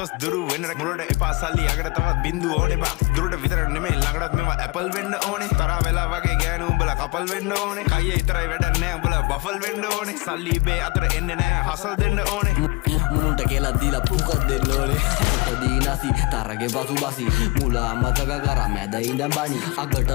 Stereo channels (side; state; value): right; quieter; 22.0 dB